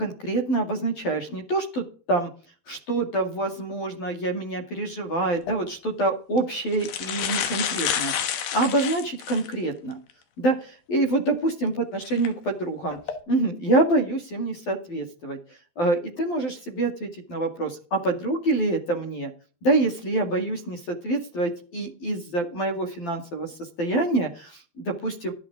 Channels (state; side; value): late; right; 12 ms